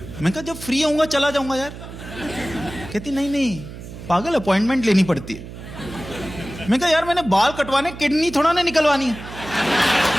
मैंने कहा जब फ्री होऊंगा चला जाऊंगा यार। कहती नहीं नहीं पागल, अपॉइंटमेंट लेनी पड़ती है। मैंने कहा यार मैंने बाल कटवाने, किडनी थोड़ा ना निकलवानी है।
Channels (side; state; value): right; noise; hum, 13 dB below the sound